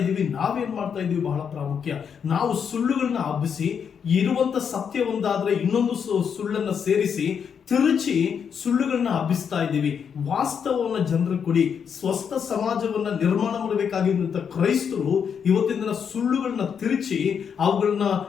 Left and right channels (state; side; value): quieter; right; 7.2 dB